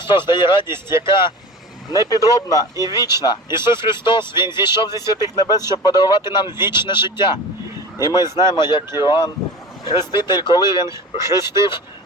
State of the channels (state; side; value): normal; both; correlation 0.34